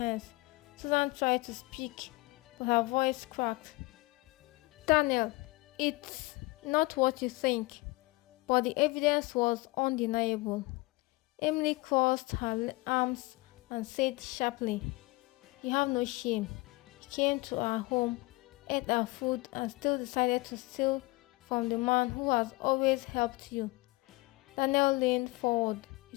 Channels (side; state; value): right; quieter; 22.6 dB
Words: Susan tried to speak, but her voice cracked. "Daniel, it's not what you think." But the evidence was undeniable. Emily crossed her arms and said sharply, "You have no shame. You came to our home, ate our food, and still decided to steal from the man who has always helped you." Daniel leaned forward,